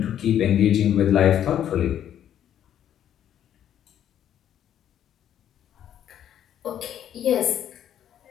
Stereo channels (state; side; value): quieter; right; 10.4 dB